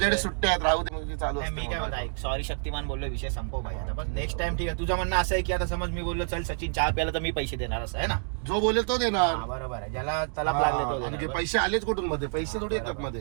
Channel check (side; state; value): left; silent; 59 dB below the other